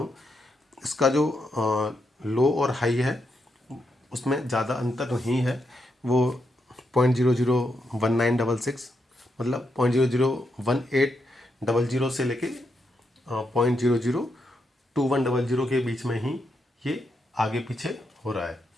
इसका जो लो और हाई है उसमें ज़्यादा अंतर नहीं है। वो 0.001966, मतलब 0.001800 से लेके 0.002100 के बीच में ही ये आगे पीछे हो रहा है।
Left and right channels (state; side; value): normal; both; correlation 0.82